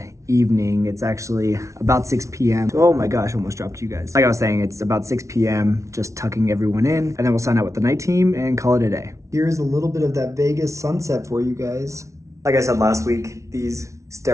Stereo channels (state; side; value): late; left; 0.14 ms